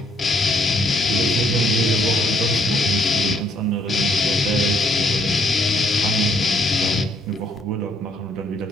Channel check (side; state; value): both; normal; correlation 0.68